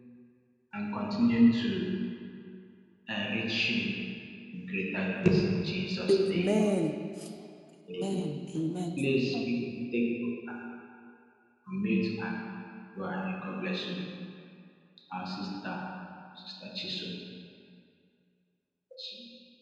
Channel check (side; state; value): both; identical; correlation 1.00